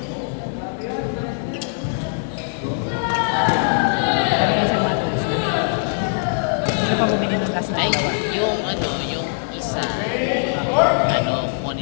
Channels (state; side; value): silent; right; digital silence